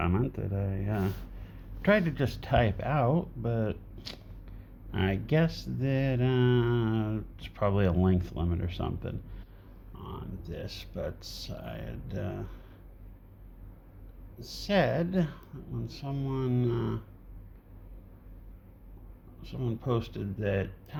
that I tried to just type out, but I guess that it's probably a length limit or something on this, but I had said when someone posted that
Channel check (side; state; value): both; identical; correlation 1.00